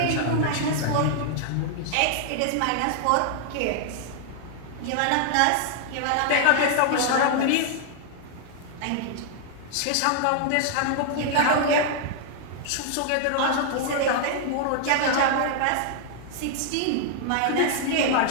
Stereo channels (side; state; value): both; different; correlation 0.00